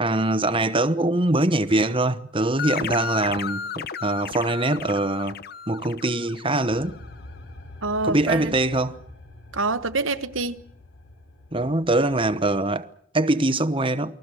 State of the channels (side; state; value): both; normal; correlation 0.44